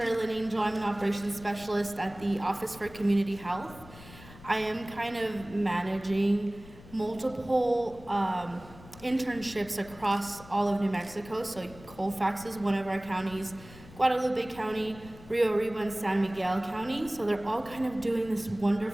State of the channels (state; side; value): noise; left; rumble, 19 dB below the sound